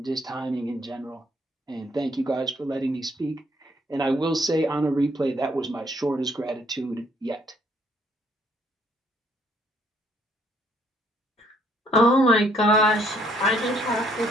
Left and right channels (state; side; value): normal; both; correlation 0.66